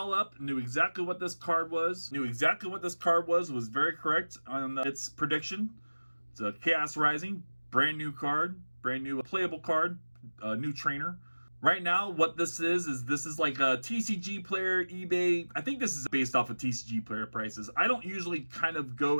up. Knew exactly what this card was. Was very correct on its prediction. It's a Chaos Rising. Brand new card. Brand new playable card. New trainer. Right now, what this is like a TCG player, eBay. I think this is based off of TCG player prices. I don't usually kind of go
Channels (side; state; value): both; inverted; correlation -1.00